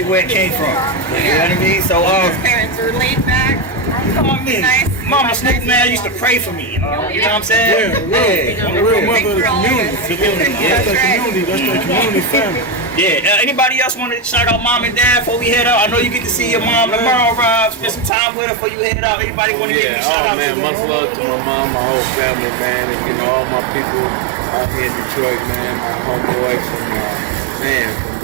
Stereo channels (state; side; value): drops out; left; at 18.1 s